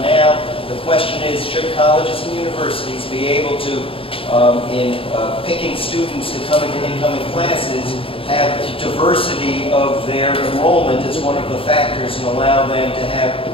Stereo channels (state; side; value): late; right; 0.27 ms